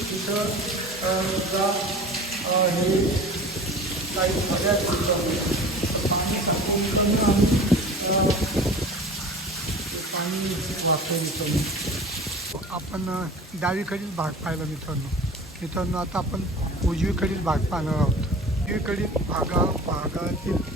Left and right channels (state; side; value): normal; both; correlation 0.39